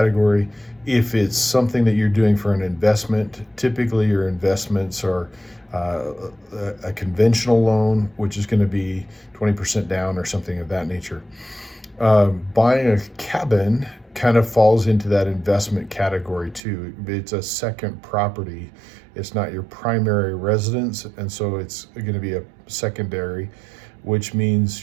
If it's something that you're doing for an investment, typically your investments are a conventional loan, which is going to be 20% down or something of that nature. Buying a cabin kind of falls into that investment category too. It's a second property. It's not your primary residence, and so it's going to be a secondary, which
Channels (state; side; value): drops out; left; at 16.6 s